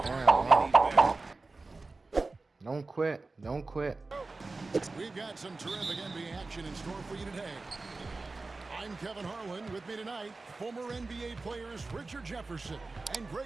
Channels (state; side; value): quieter; left; 3.5 dB